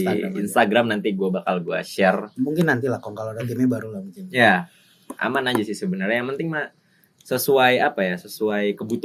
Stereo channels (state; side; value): identical; both; correlation 1.00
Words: Instagram nanti gue bakal share. Mungkin nanti lah kalau ada timnya baru lah mungkin. Ya. Aman aja sih sebenarnya. Yang penting mah sesuai sesuai